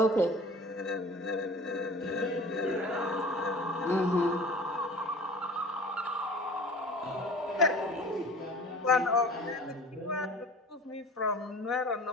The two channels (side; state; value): both; normal; correlation 0.42